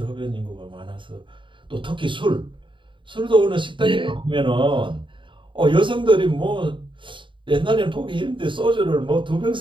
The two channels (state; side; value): late; left; 0.24 ms